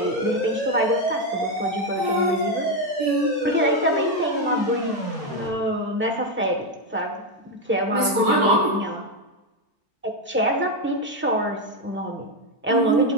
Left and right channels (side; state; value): both; normal; correlation 0.07